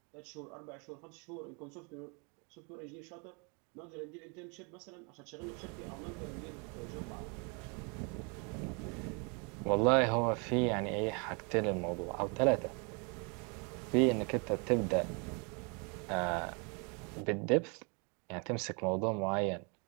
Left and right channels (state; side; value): quieter; left; 34.0 dB